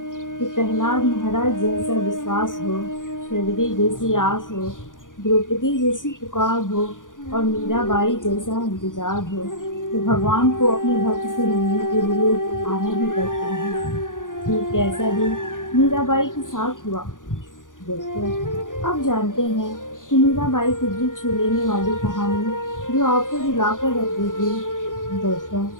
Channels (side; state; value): right; late; 0.88 ms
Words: कि प्रहलाद महाराज जैसा विश्वास हो, शबरी जैसी आस हो, द्रौपदी जैसी पुकार हो और मीराबाई जैसा इंतजार हो, तो भगवान को अपने भक्त से मिलने के लिए आना ही पड़ता है। ठीक ऐसा ही मीराबाई के साथ हुआ। दोस्तों, अब जानते हैं कि मीराबाई की दिल छू लेने वाली कहानी जो आपको रुलाकर रख देगी। दोस्तों,